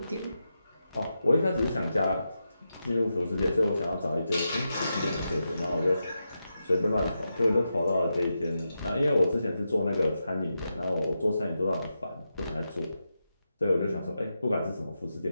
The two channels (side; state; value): both; inverted; correlation -0.88